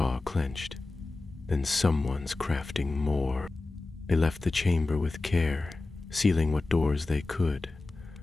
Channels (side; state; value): right; quieter; 3.2 dB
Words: clenched. "Then someone's crafting more." They left the chamber with care, sealing what doors they could,